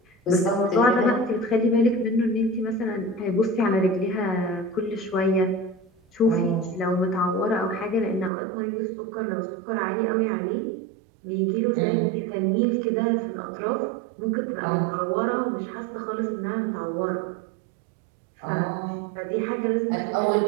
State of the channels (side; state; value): left; drops out; at 8.3 s